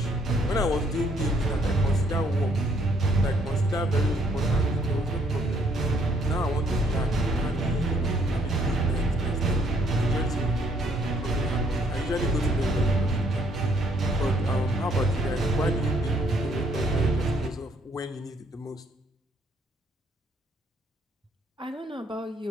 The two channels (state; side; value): normal; both; correlation 0.67